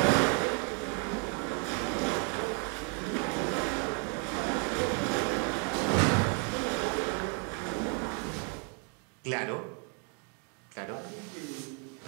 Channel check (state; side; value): quieter; left; 39.3 dB